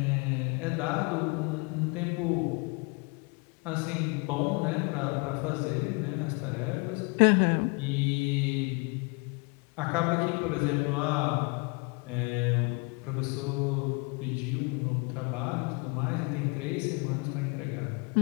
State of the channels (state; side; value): quieter; right; 30.4 dB